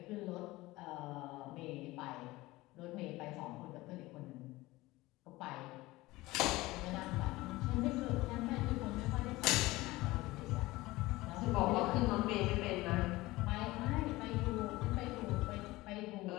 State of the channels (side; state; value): right; quieter; 19.5 dB